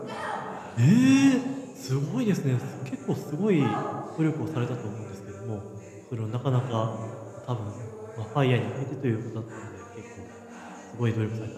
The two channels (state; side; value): identical; both; correlation 1.00